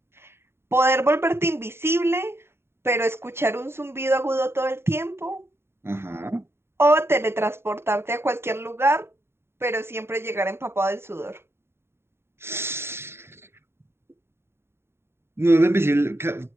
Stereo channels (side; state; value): left; late; 0.12 ms